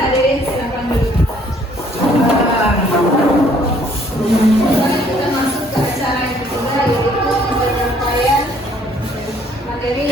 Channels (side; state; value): both; normal; correlation 0.62